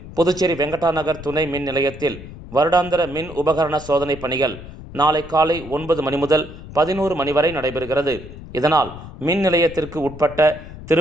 புதுச்சேரி வெங்கடா நகர் துணை மின் நிலையத்தில் வருடாந்திர மின் உபகரண சோதனை பணிகள் நாளை காலை 9 மணி முதல் 11 மணி வரை நடைபெறுகிறது. இதனால் மின் நிலையத்திற்கு உட்பட்ட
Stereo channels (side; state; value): left; noise; rumble, 14 dB below the sound